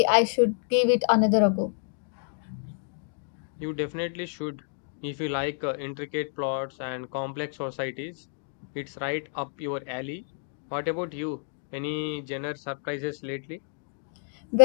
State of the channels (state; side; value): silent; right; 59 dB below the other